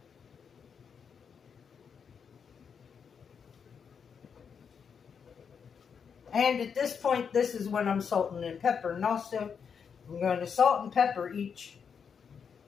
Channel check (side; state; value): right; quieter; 6.6 dB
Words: And at this point, this is when I'm salting and pepper. And also, I'm going to salt and pepper each